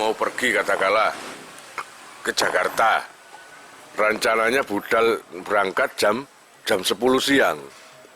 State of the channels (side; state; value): both; identical; correlation 1.00